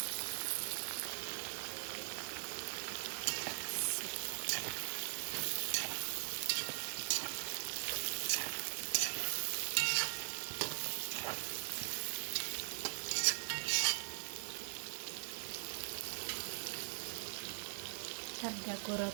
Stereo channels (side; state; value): left; silent; digital silence